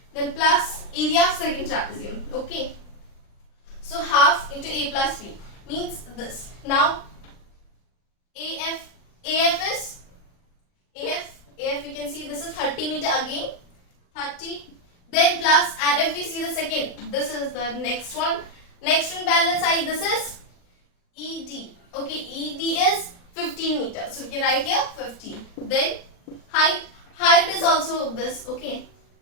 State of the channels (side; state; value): right; late; 39 ms